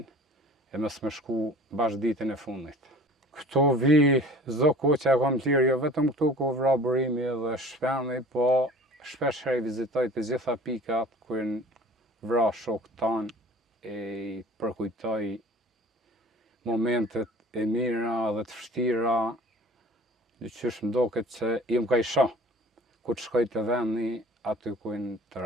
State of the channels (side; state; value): both; normal; correlation 0.45